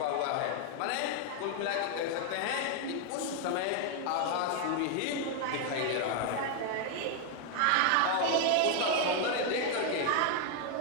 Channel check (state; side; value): different; both; correlation 0.00